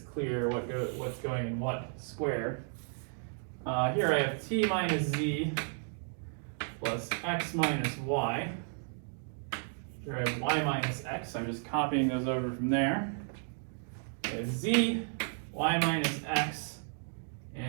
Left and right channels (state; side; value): silent; left; 55 dB below the other